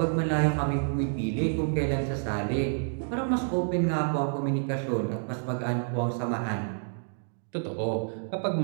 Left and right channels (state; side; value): silent; left; digital silence